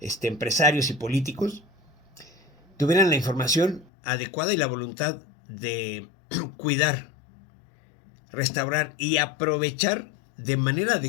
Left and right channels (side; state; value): right; drops out; at 3.9 s